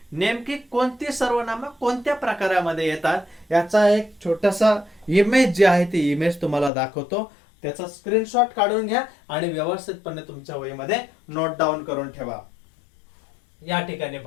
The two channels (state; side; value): drops out; right; at 6.7 s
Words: नेमकी कोणती सर्वनाम कोणत्या प्रकारामध्ये येतात याचा एक छोटासा इमेज जे आहे ती इमेज तुम्हाला दाखवतो. त्याचा स्क्रीनशॉट काढून घ्या आणि व्यवस्थितपणे तुमच्या वहीमध्ये नोट डाऊन करून ठेवा. या ठिकाणी